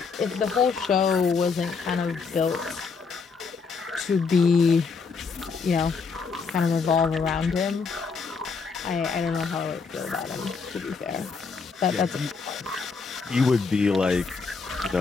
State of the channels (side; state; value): right; quieter; 5.0 dB